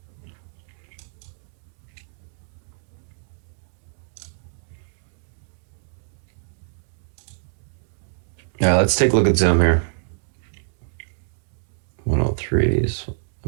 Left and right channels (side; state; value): left; silent; digital silence